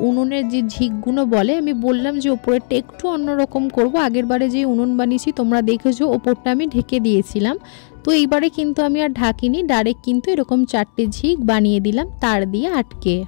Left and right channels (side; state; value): right; silent; 68 dB below the other